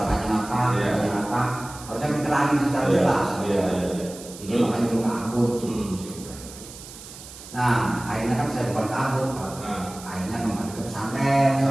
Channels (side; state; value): right; noise; hiss, 16 dB below the sound